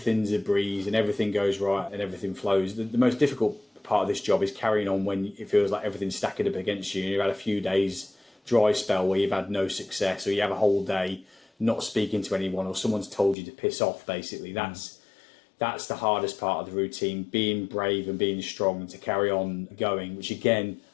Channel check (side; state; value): right; drops out; at 13.4 s